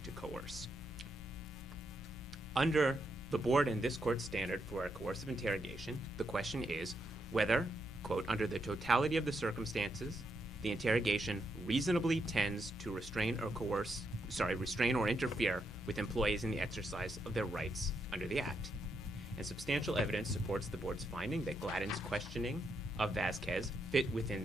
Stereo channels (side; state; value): both; normal; correlation 0.80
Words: to coerce. Under the Board and this Court's standard for a coercive interrogation, the question is whether, quote, under the totality of the circumstances, the interrogation reasonably tends to restrain or interfere with employees in the exercise of their rights under the Act. And substantial evidence supports the Board's finding that Gladden's questioning of Vasquez fit within